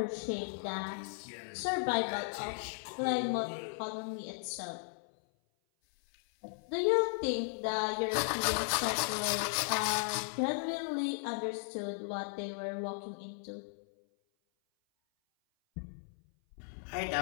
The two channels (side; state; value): right; silent; 54 dB below the other